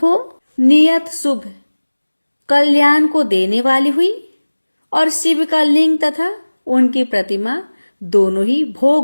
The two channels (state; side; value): inverted; both; correlation -1.00